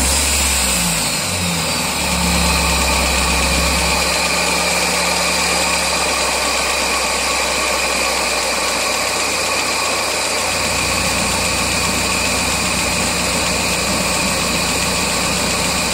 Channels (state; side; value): identical; both; correlation 1.00